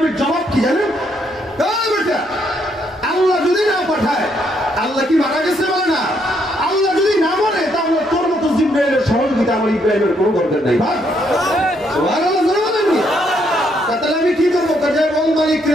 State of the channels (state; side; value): normal; both; correlation 0.73